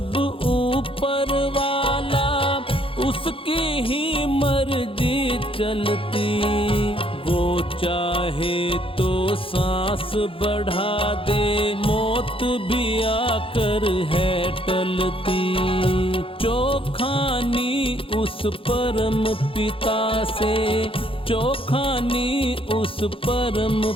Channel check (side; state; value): right; late; 0.26 ms